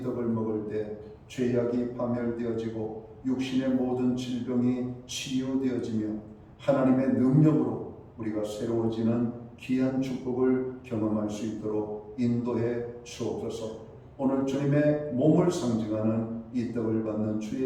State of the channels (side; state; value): both; identical; correlation 1.00